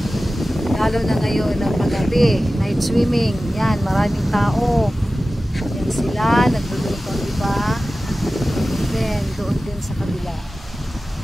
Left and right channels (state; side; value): normal; both; correlation 0.95